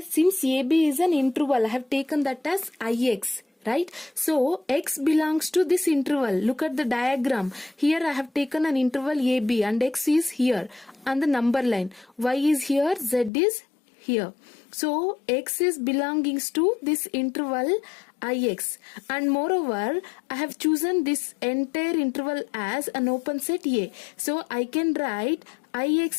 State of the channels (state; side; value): drops out; right; at 13.3 s